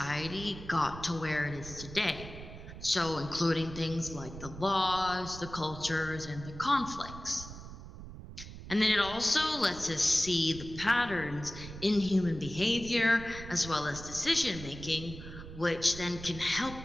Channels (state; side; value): noise; right; rumble, 12 dB below the sound